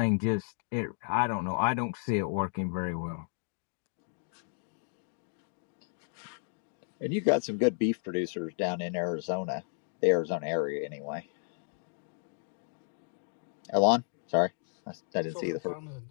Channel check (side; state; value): right; silent; digital silence